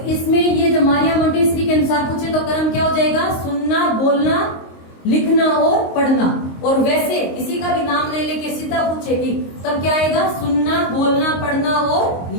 इसमें ये जो मारिया मोंटेसरी के अनुसार पूछे तो क्रम क्या हो जाएगा? सुनना, बोलना, लिखना और पढ़ना। और वैसे किसी का भी नाम नहीं लेके सीधा पूछेगी तब क्या आएगा? सुनना, बोलना, पढ़ना और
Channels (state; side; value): late; right; 22 ms